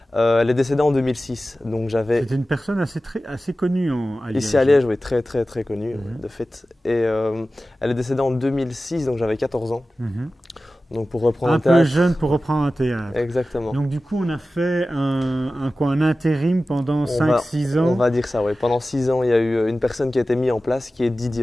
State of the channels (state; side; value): normal; both; correlation 0.95